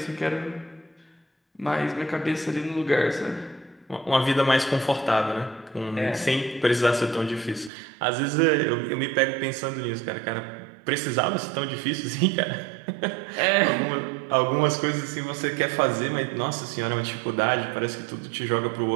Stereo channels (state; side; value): drops out; left; at 7.7 s